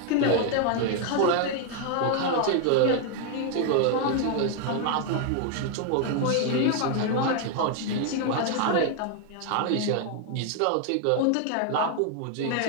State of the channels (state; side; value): different; both; correlation 0.00